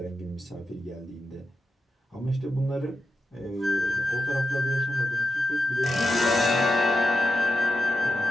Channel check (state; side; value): normal; both; correlation 0.89